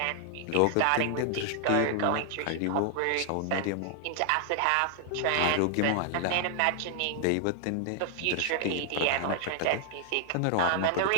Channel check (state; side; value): different; both; correlation 0.00